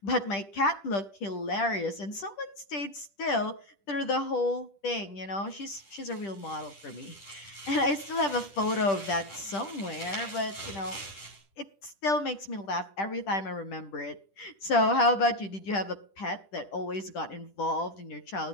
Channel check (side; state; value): right; late; 10 ms